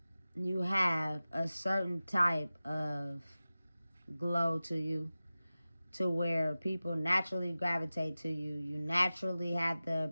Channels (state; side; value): inverted; both; correlation -0.96